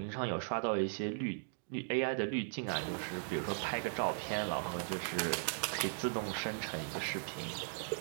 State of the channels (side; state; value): left; silent; digital silence